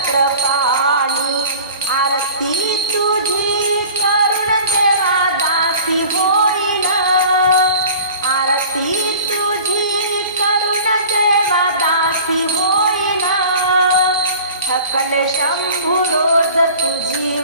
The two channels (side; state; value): both; inverted; correlation -0.43